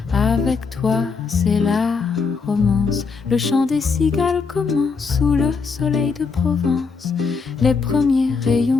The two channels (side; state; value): right; quieter; 5.0 dB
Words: Avec toi, c'est la romance, le chant des cigales commence. Sous le soleil de Provence, les premiers